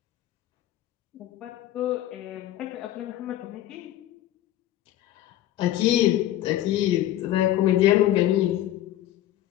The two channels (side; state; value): right; quieter; 13.4 dB